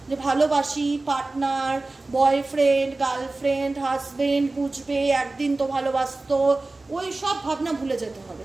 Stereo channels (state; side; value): quieter; left; 3.2 dB